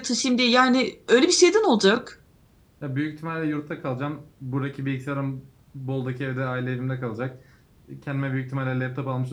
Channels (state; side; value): identical; both; correlation 1.00